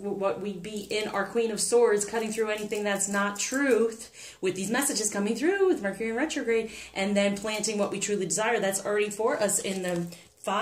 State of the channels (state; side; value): identical; both; correlation 1.00